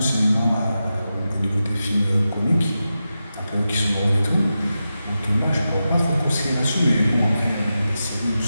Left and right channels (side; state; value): both; inverted; correlation -0.91